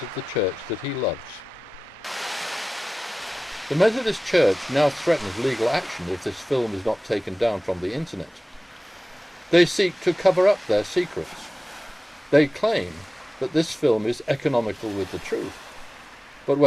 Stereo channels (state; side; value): normal; both; correlation 0.96